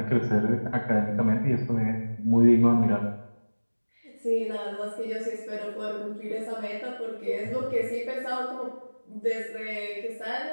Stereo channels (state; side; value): inverted; both; correlation -1.00